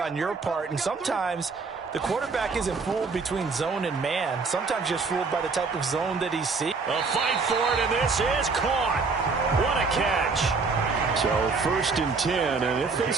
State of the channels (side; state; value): left; quieter; 4.5 dB